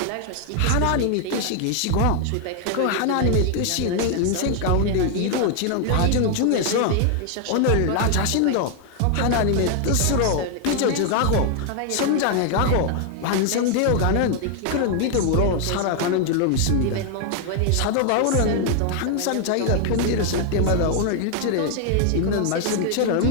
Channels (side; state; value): both; different; correlation 0.00